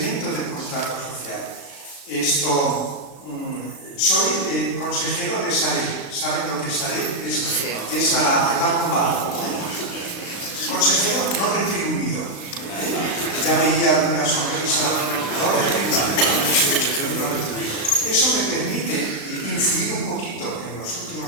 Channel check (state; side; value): late; right; 36 ms